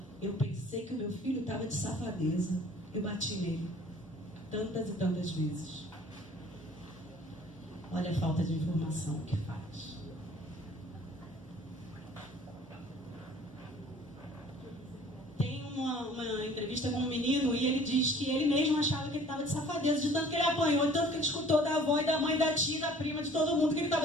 eu pensei que o meu filho estava de safadeza. Eu bati nele tantas e tantas vezes. Olha a falta de informação que faz. Tem uma entrevista com um menino e ele diz que ele mesmo achava que ele estava de safadeza, de tanto que ele apanhou, de tanto que ele escutou da avó e da mãe, da tia, da prima, de todo mundo que ele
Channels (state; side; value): normal; both; correlation 0.51